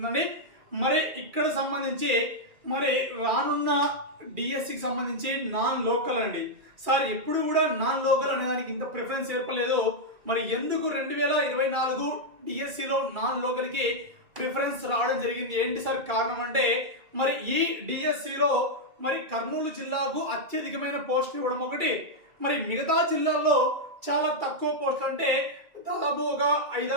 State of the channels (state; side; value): late; left; 2.3 ms